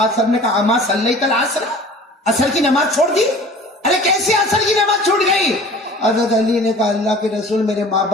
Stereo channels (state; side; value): normal; both; correlation 0.44